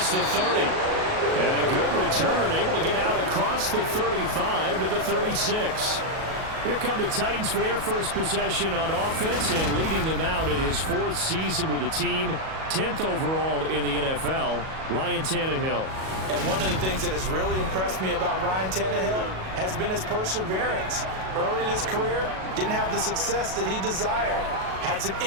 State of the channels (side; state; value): left; late; 37 ms